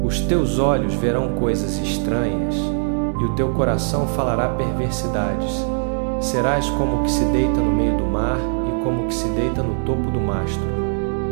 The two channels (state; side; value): silent; left; digital silence